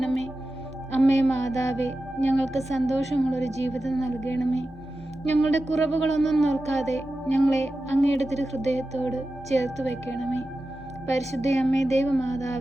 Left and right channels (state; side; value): normal; both; correlation 0.93